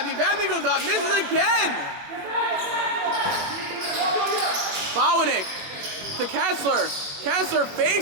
Vabney goes up, misses again. Bowanek to Kessler. Kessler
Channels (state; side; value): late; left; 21 ms